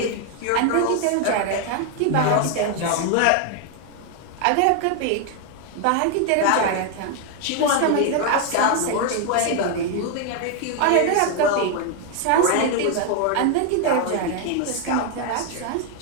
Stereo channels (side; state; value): both; different; correlation 0.01